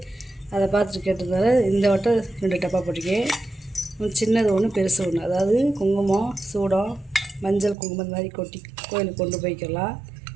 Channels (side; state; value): left; drops out; at 7.8 s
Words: அதை பார்த்துட்டு கேட்டதால இந்த வட்டம் 2 டப்பா போட்டிருக்கேன். சின்னது ஒன்று, பெருசு ஒன்று. அதாவது குங்குமம், சூடம், மஞ்சள் குங்குமம் இந்த மாதிரி கொட்டி கோயிலுக்கு கொண்டு போய்க்கலாம்.